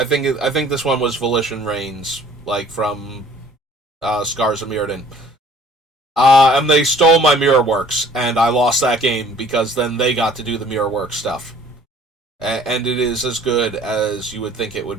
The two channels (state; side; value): normal; both; correlation 0.53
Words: think this one was Volition Reigns, like from Scars of Mirrodin. And they stole my Mirror Works, and I lost that game because then they got to do the Mirror Works stuff. And it is as good as you would think it